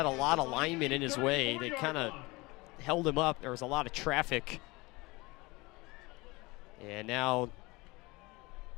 a lot of linemen in his way. They kind of held him up. There was a lot of traffic. And now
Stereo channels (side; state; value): right; quieter; 23.5 dB